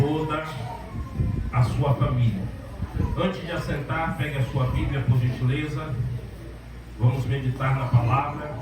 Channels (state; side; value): identical; both; correlation 1.00